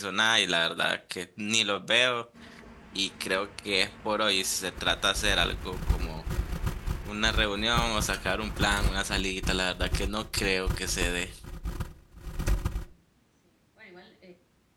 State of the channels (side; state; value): both; identical; correlation 1.00